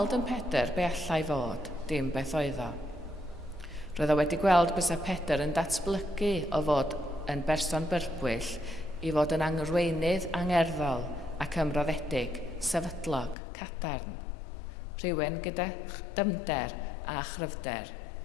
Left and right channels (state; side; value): drops out; right; at 13.4 s